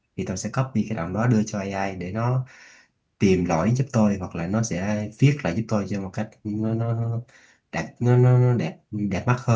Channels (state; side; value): identical; both; correlation 1.00